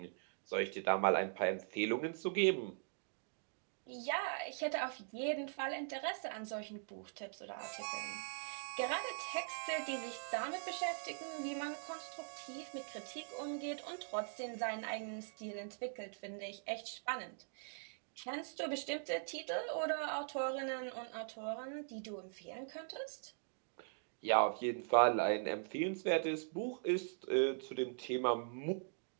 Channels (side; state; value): left; silent; digital silence